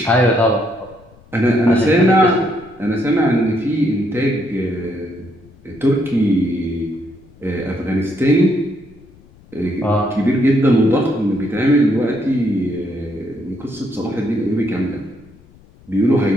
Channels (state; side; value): noise; left; rumble, 26 dB below the sound